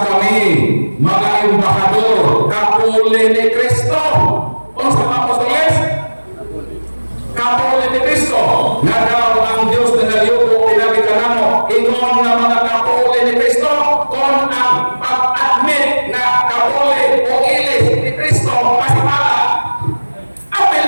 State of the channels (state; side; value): inverted; both; correlation -1.00